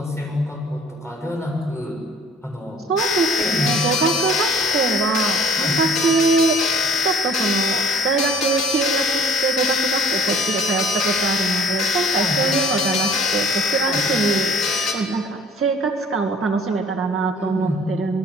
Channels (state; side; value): normal; both; correlation 0.53